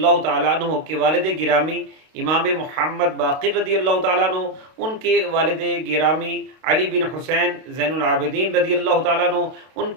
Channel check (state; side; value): late; left; 32 ms